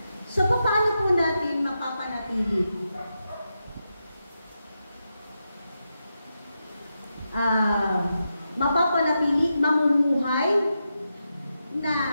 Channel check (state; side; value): inverted; both; correlation -0.87